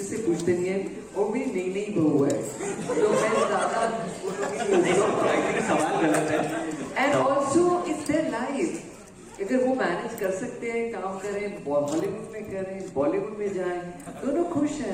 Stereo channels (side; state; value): both; identical; correlation 1.00